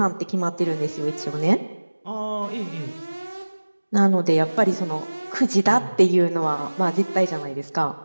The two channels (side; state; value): both; inverted; correlation -1.00